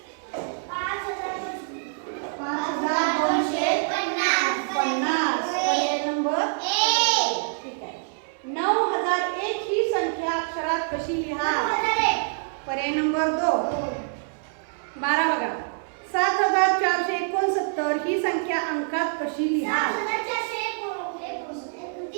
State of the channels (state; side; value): silent; left; 61 dB below the other